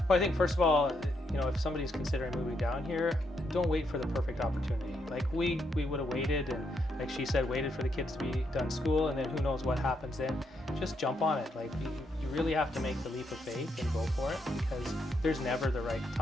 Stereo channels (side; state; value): both; normal; correlation 0.78